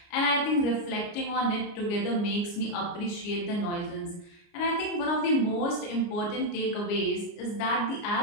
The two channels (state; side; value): late; right; 29 ms